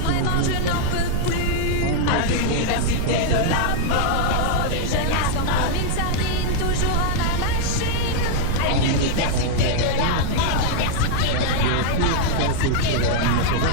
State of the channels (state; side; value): different; both; correlation -0.01